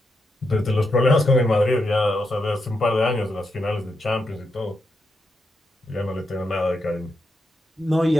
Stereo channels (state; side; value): normal; both; correlation 0.84